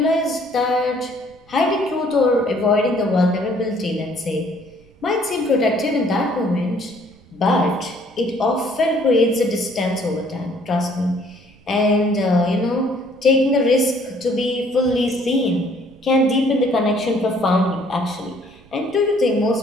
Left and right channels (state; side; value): noise; right; rumble, 28 dB below the sound